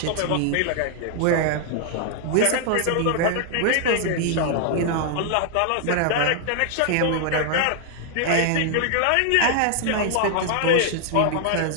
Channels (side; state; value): both; different; correlation 0.00